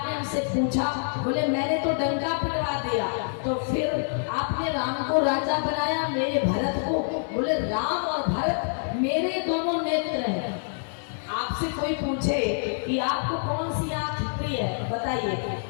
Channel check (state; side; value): silent; right; digital silence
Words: हमसे पूछा? बोले मैंने तो डंका पिटवा दिया, तो फिर आपने राम को राजा बनाया, मेरे भरत को? बोले राम और भरत मेरे दोनों नेत्र हैं। आपसे कोई पूछे कि आपको कौन सी आंख प्रिय है, बताइए